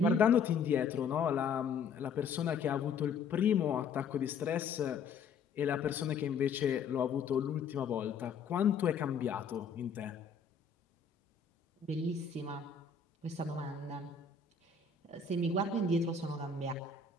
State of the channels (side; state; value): right; quieter; 5.6 dB